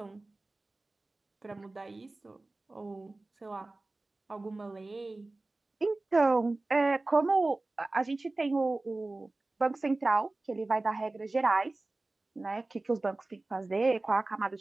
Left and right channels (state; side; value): quieter; left; 3.1 dB